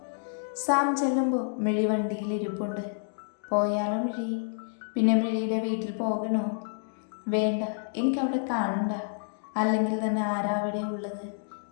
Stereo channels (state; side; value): silent; right; digital silence